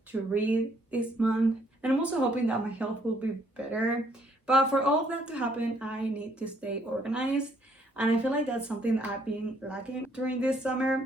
to read this month, and I'm also hoping that my health will be better. But for all of that to happen, I need to stay organized. And I feel like that's something that I've been lacking during this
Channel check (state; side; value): normal; both; correlation 0.67